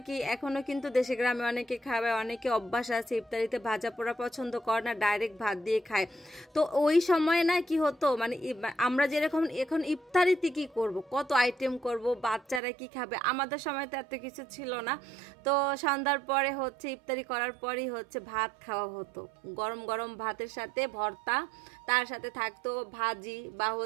কি এখনো কিন্তু দেশে গ্রামে অনেকে খাবে, অনেকে অভ্যাস আছে ইফতারিতে ভাজা পোড়া পছন্দ করে না, ডাইরেক্ট ভাত দিয়ে খায়। তো ওই সময় না কি হতো, মানে আমরা যেরকম এখন ইফতারিতে কি করব, কত আইটেম করব, বাচ্চারা কি খাবে, আমাদের সময় তো এত কিছু ছিল না। তো সন্ধ্যার পরে হচ্ছে ইফতারি করার পরই হচ্ছে ভাত খাওয়া হতো, গরম গরম ভাতের সাথে ভর্তা, তার সাথে থাকতো ভাজি বা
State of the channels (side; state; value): left; drops out; at 12.6 s